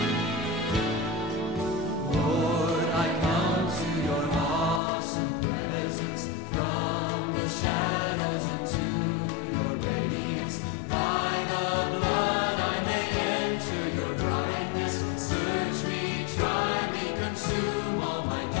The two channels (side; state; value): right; drops out; at 4.8 s